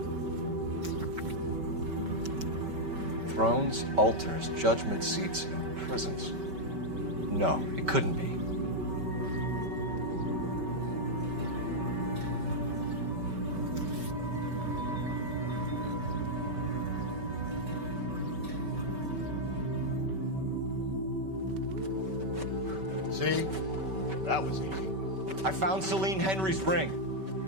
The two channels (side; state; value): left; late; 5.2 ms